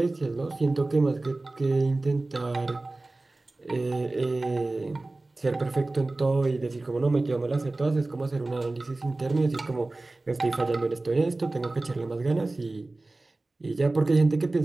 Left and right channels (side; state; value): left; quieter; 3.1 dB